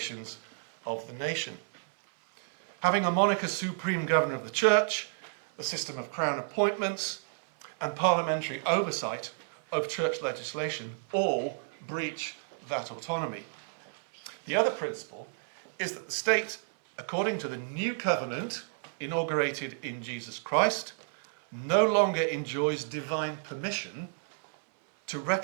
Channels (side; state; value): left; silent; 57 dB below the other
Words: of the nation. Having a monarch as supreme governor of the church, the system of crown appointments, and parliamentary oversight of church legislation all breach that autonomy. The other principle is that the state, according to the new covenant inaugurated in Jesus Christ, no longer enjoys divine permission to